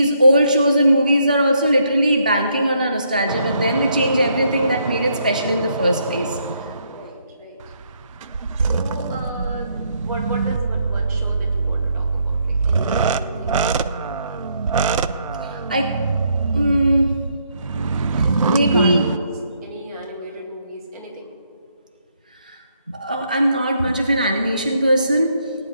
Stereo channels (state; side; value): inverted; both; correlation -0.74